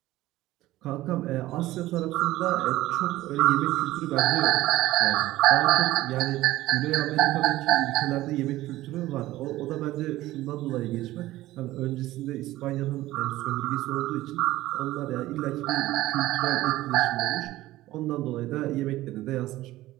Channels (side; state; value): left; quieter; 16.5 dB